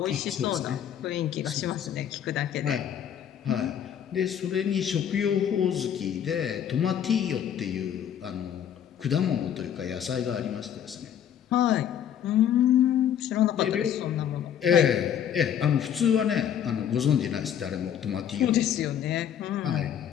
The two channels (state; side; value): quieter; right; 9.4 dB